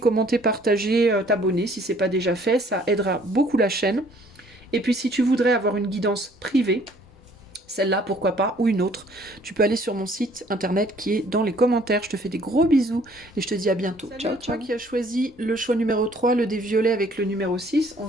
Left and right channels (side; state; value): both; normal; correlation 0.59